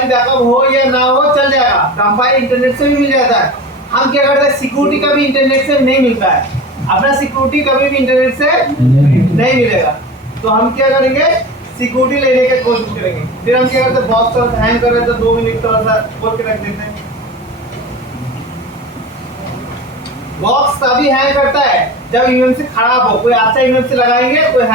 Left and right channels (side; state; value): both; normal; correlation 0.32